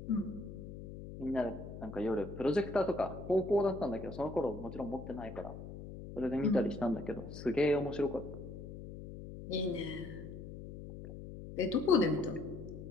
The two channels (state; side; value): noise; left; hum, 11 dB below the sound